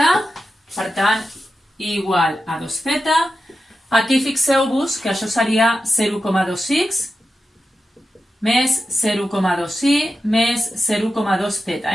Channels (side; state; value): both; normal; correlation 0.91